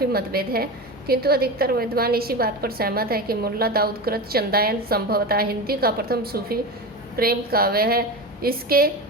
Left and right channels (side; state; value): both; normal; correlation 0.24